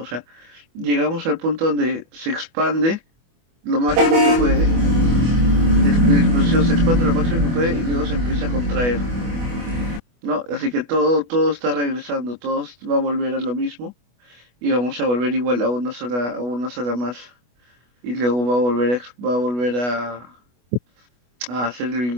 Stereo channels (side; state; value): left; late; 24 ms